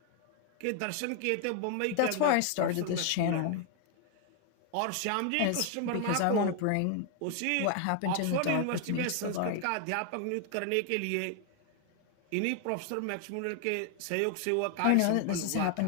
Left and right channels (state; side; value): different; both; correlation 0.00